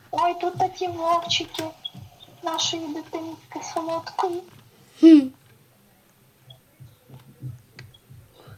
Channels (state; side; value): identical; both; correlation 1.00